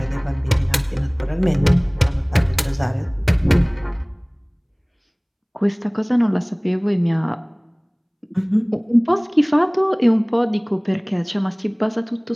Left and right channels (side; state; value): both; identical; correlation 1.00